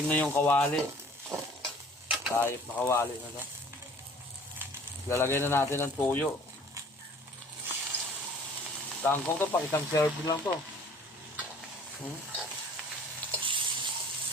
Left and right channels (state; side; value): normal; both; correlation 0.51